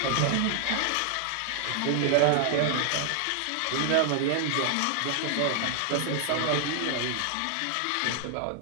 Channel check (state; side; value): different; both; correlation 0.00